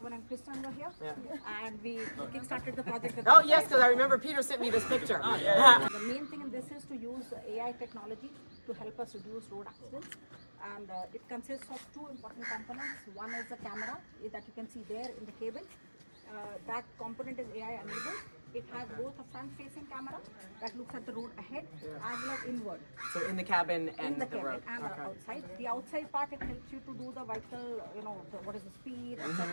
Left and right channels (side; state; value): both; inverted; correlation -1.00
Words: and Kristen were here. Yeah. And we kickstarted the project. with Oh them. yes, because I remember Peter sent me this picture. The main thing in this is to use AI technology to help us reduce road accidents. And it consists of two important components. One is the camera that you can see there in the cabin. That component is AI enabled. It has both a front-facing camera that looks at the road ahead as well as inward. So in the cabin and In the the cabin road. and Okay. the outside. The outside part, it helps you to do the vital, what is the speed,